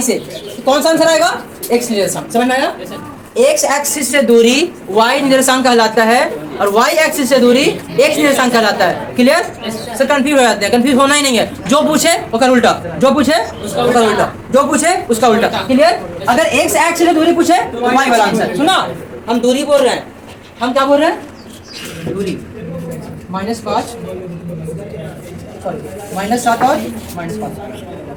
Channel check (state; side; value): identical; both; correlation 1.00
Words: से, तो कौन सा आंसर आएगा, x निर्देशांक। समझ में आया। x एक्सिस से दूरी y निर्देशांक कहलाता है और y एक्सिस से दूरी x निर्देशांक कहलाता है। क्लियर। सर कंफ्यूज हो जाते हैं, कंफ्यूज होना ही नहीं है, जो पूछे वो कर उल्टा, जो पूछे उसका उल्टा, जो पूछे उसका उल्टा। क्लियर। अगर x एक्सिस से दूरी पूछे तो y वाला आंसर। सुना, हम दूरी बोल रहे हैं, हम क्या बोल रहे हैं, दूरी, -5 -7 और